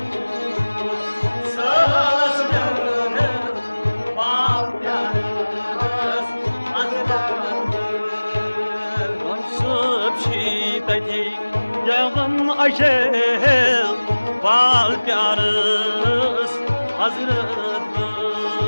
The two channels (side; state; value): both; inverted; correlation -1.00